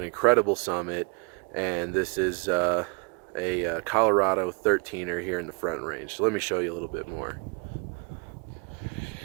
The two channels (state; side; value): quieter; left; 33.9 dB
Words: incredible summit, and this is a Colorado 13er here in the Front Range. So let me show you a little bit more.